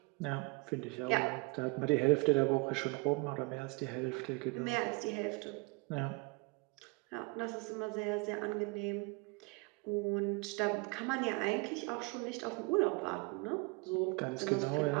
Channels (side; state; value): left; quieter; 28.2 dB